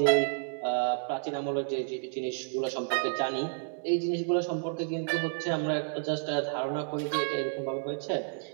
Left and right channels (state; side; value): silent; left; digital silence